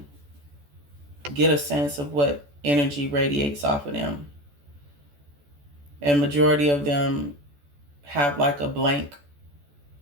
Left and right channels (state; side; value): late; left; 14 ms